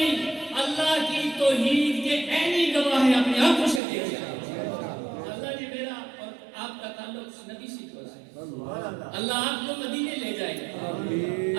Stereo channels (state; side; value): drops out; left; at 3.8 s